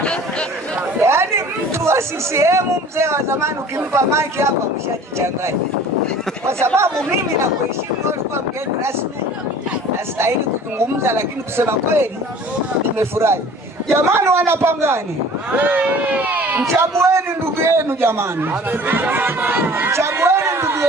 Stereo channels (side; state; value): both; normal; correlation 0.46